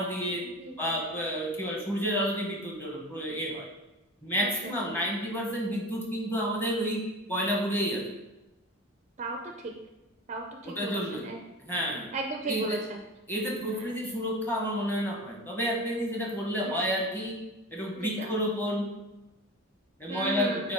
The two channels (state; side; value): normal; both; correlation 0.32